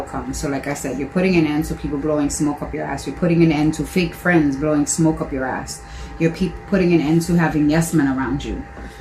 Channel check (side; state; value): both; identical; correlation 1.00